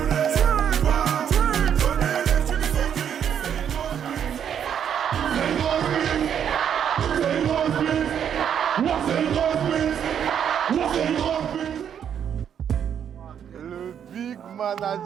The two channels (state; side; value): quieter; left; 8.6 dB